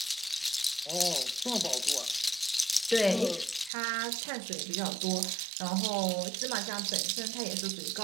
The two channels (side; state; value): left; drops out; at 3.7 s